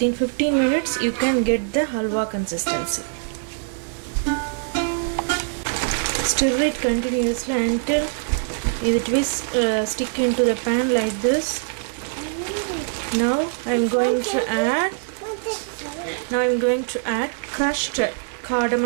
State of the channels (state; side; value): silent; left; digital silence